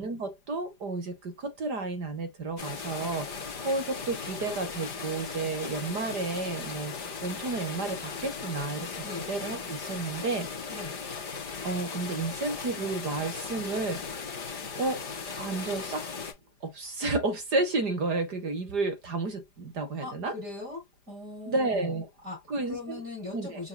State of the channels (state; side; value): late; left; 5.0 ms